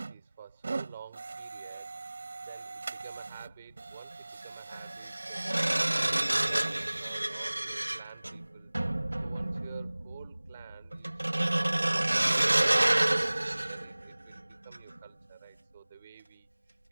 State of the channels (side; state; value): both; inverted; correlation -1.00